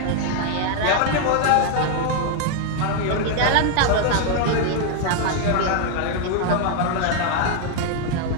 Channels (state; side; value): different; both; correlation 0.00